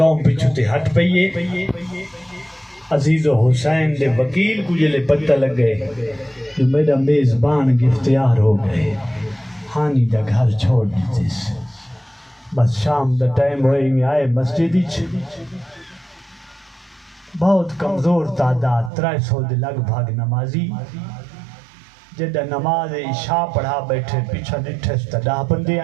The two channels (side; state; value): left; drops out; at 18.9 s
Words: پیچھو تے ہٹ پئیے عزیز و حسین دے وکیل کو جلے پتہ لگ گئے جو میرا میزبان گفتیار ہو گئے ہانی دا گھر چھوڑ دیتے بس شام دا ٹائم ہوئی میں آئے مسجدی بہت کمزور تعداد 300 دے لگ بھاگ نمازی جدہ نماز عشاء پڑھا بیٹھے پیچھا نٹھے ستدہ بندے